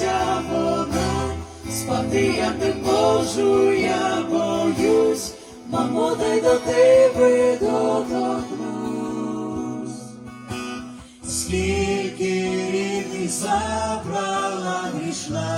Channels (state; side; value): identical; both; correlation 1.00